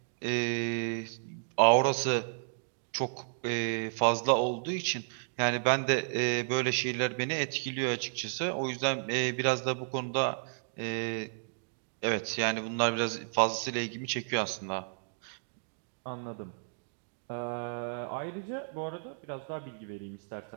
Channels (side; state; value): left; silent; digital silence